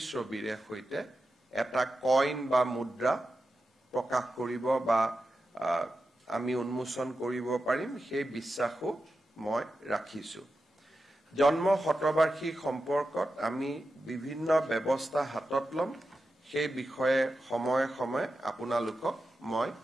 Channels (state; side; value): normal; both; correlation 0.91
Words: সৈতে এটা কইন বা মুদ্ৰা প্ৰকাশ কৰিব বা আমি উন্মোচন কৰিব পাৰিম সেই বিশ্বাসও মই ৰাখিছো জন্ম শতবাৰ্ষিক সম্পৰ্কত আমি বিভিন্ন ব্যৱস্থা হাতত লম সেই বিষয়ে সময়ে সময়ে আপোনালোকক মই